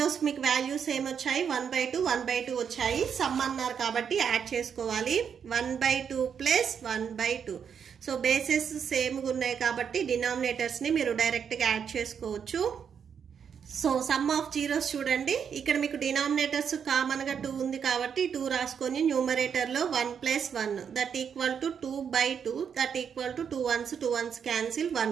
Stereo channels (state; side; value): quieter; left; 7.4 dB